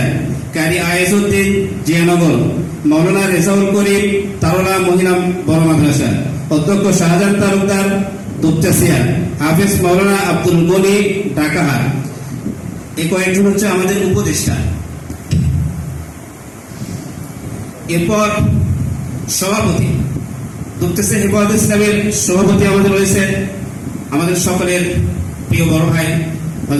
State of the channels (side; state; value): both; identical; correlation 1.00